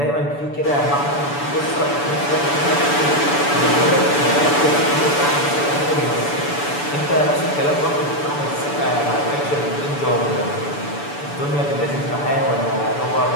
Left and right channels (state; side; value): late; right; 6.9 ms